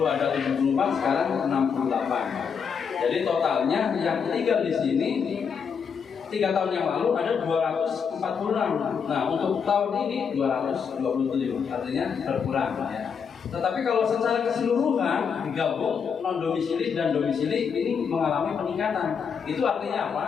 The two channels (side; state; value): right; quieter; 6.6 dB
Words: ada 74, sekarang 68. Jadi totalnya yang tinggal di sini 3 tahun yang lalu ada 246. Nah, untuk tahun ini 227, artinya berkurang ya. Tetapi kalau secara keseluruhan digabung non domisili dan domisili ini mengalami peningkatan. Itu artinya